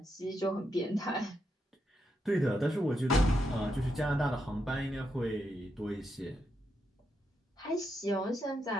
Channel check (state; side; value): normal; both; correlation 0.82